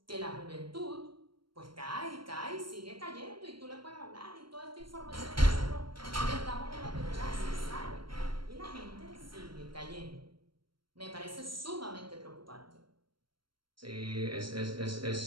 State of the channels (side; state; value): left; late; 0.73 ms